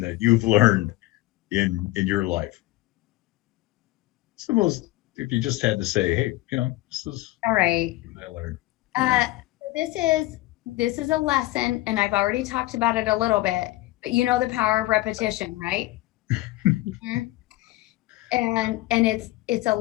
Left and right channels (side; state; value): right; quieter; 18.6 dB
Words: that you've learned in your life? It's the most, if you just had to say, hey, this is all right. what I learned. This is a lesson, and I've already talked about it a little bit, but you know the power of repetition, right? Mhm. And it's a